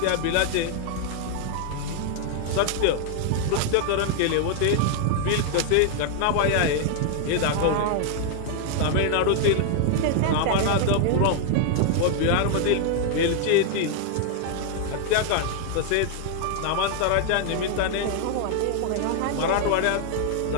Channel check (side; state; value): both; different; correlation 0.00